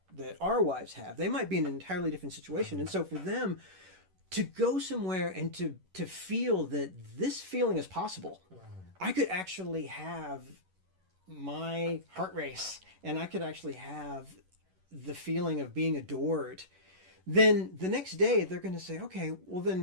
our wives have. They might be in an entirely different situation. And so for them to go somewhere and to feel that this feeling is possible, I could actually have my heart race, and I could actually have the feeling of being adored, then the next day they're going to say, okay, well then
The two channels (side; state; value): left; late; 11 ms